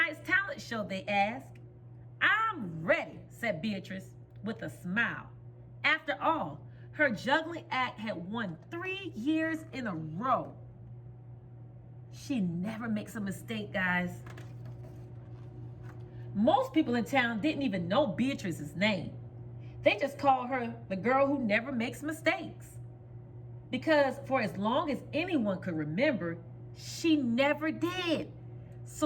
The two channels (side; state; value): both; identical; correlation 1.00